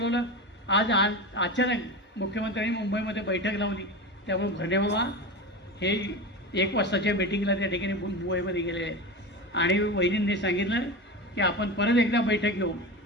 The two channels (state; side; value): normal; both; correlation 0.25